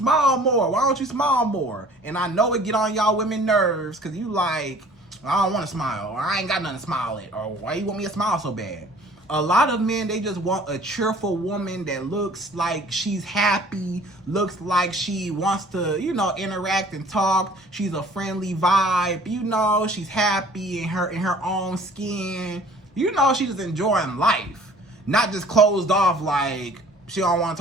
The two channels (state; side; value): normal; both; correlation 0.51